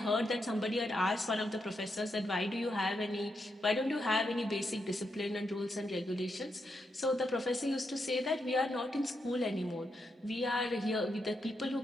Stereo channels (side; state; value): both; normal; correlation 0.83